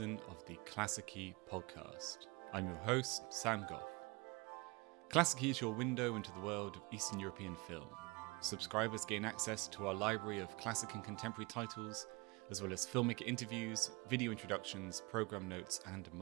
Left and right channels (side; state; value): left; quieter; 26.5 dB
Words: of the Klassiki Podcast. I'm your host, Sam Goff. Klassiki is your window into the world of Eastern European film. Subscribers gain access to our library of classic and contemporary titles, as well as filmmaker interviews, video introductions, program notes, and